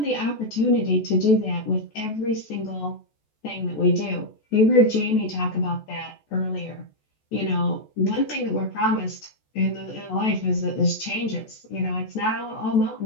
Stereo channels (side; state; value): right; late; 14 ms